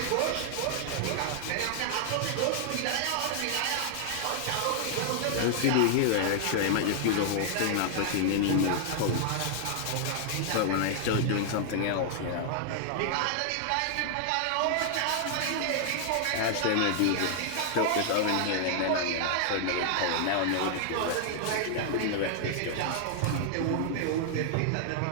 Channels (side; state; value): both; different; correlation 0.00